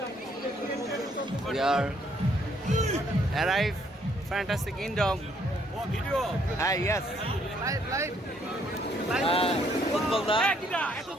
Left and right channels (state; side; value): normal; both; correlation 0.68